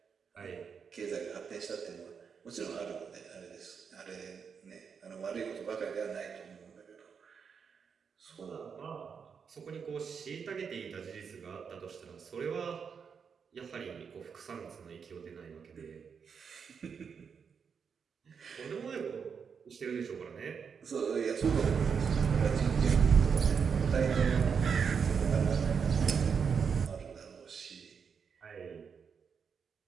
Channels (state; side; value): quieter; left; 6.4 dB